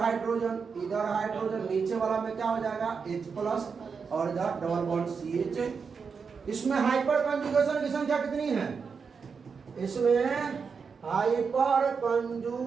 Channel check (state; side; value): quieter; left; 5.6 dB